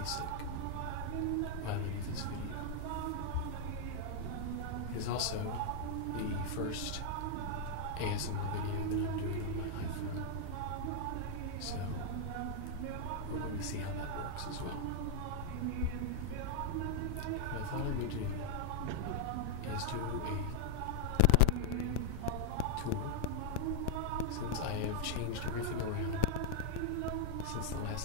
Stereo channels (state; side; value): different; both; correlation -0.01